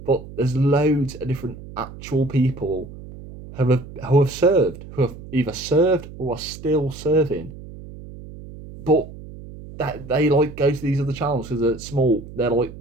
But there's loads of different actual people who have served, who have either served or are still serving. But that they like go to these other channels because they're small. They're like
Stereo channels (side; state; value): right; noise; hum, 15 dB below the sound